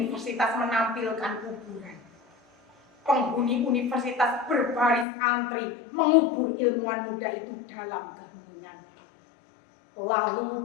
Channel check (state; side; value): drops out; right; at 5.1 s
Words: menampilkan kuburan. Penghuni universitas berbaris antri mengubur ilmuwan muda itu dalam keheningan.